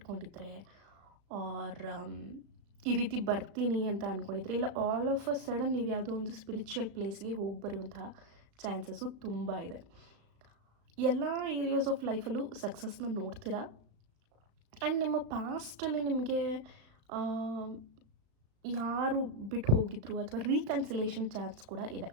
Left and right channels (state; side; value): late; left; 36 ms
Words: ಆರ್ ಈ ರೀತಿ ಬರ್ತೀನಿ ಅಂತ ಅಂದ್ಕೊಂಡಿದ್ರೆ, ಇಲ್ಲ ಆಲ್ ಆಫ್ ಅ ಸಡನ್ ನೀವು ಯಾವುದೋ ಒಂದು ಸ್ಪಿರಿಚುವಲ್ ಪ್ಲೇಸ್ಗೆ ಹೋಗಿ ಬರುವಂತಹ ಚಾನ್ಸಸ್ಸು ತುಂಬ ಇದೆ. ಎಲ್ಲ ಏರಿಯಾಸ್ ಆಫ್ ಲೈಫಲ್ಲೂ ಸಕ್ಸಸ್ನ ನೋಡ್ತೀರಾ. ಆ್ಯಂಡ್ ನಿಮ್ಮ ಪಾಸ್ಟಲ್ಲಿ ನಿಮಗೆ ಯಾರು ಬಿಟ್ಟು ಹೋಗಿದ್ರು ಅಥವಾ ರೀಕನ್ಸಿಲೇಷನ್ ಚಾನ್ಸ್ ಕೂಡ ಇದೆ.